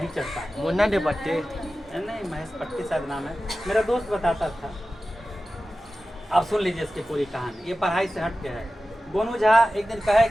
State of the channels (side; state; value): both; normal; correlation 0.95